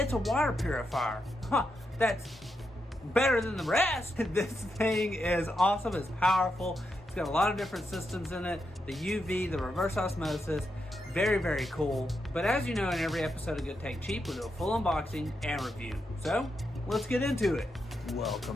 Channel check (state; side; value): normal; both; correlation 0.84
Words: a water purifier. That's better than the rest. This thing is awesome, it's powerful. It's got a lot of different systems in it. The UV, the reverse osmosis, very, very cool. But as you know, in every episode of Good Tech Cheap, we do a full unboxing and review. So let's get into it.